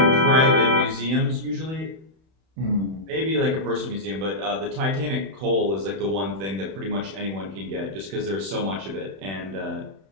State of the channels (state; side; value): late; left; 31 ms